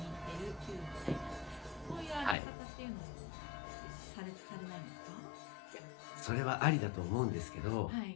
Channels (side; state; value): right; drops out; at 2.4 s